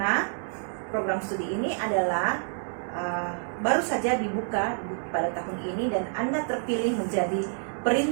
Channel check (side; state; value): left; silent; digital silence